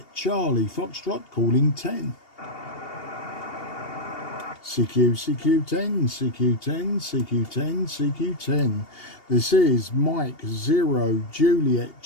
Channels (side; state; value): right; late; 2.8 ms